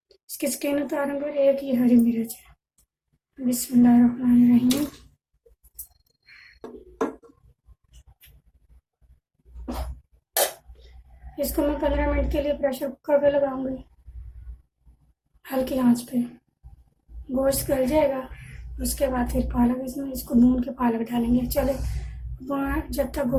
इसकी स्किन उतारूंगी। और 1 ये हरी मिर्च है। बिस्मिल्लाहिर्रहमानिर्रहीम। इसको मैं 15 मिनट के लिए प्रेशर कुकर पे लगाऊंगी, हल्की आंच पे। गोश्त गल जाएगा, उसके बाद फिर पालक इसको भून के पालक डालेंगे। चले, जब तक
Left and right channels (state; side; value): identical; both; correlation 1.00